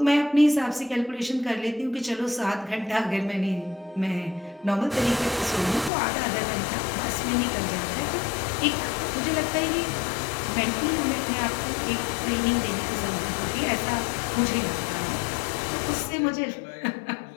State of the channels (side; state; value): right; drops out; at 5.9 s